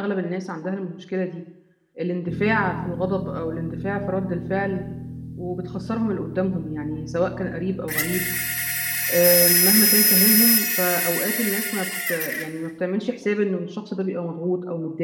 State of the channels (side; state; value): both; identical; correlation 1.00